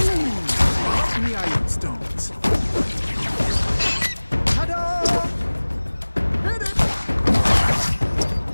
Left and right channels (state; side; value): inverted; both; correlation -1.00